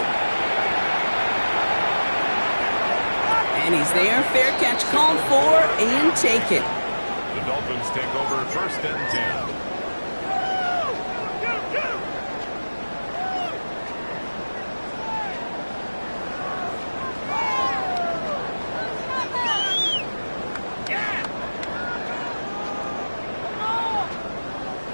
And he's there. Fair catch called for and taken. The Dolphins take over 1st and 10.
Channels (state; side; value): inverted; both; correlation -1.00